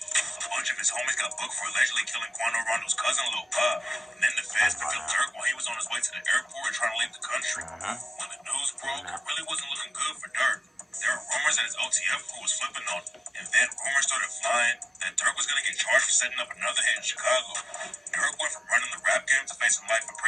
bunch of his homies got booked for allegedly killing Quando Rondo's cousin, Lil Pop. And then the feds picked up Durk while he was on his way to the airport and trying to leave the country. When the news broke, it really wasn't looking good for Durk. There were rumors that his OTF crew was flipping on him. And then rumors started flying that Durk was going to get charged for setting up another hit in Chicago. Durk went from running the rap game to facing life in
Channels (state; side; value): normal; both; correlation 0.95